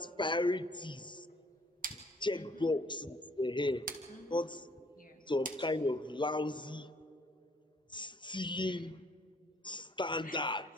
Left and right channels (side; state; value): both; normal; correlation 0.61